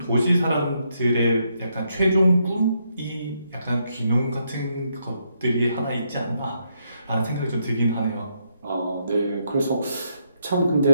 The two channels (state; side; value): inverted; both; correlation -0.77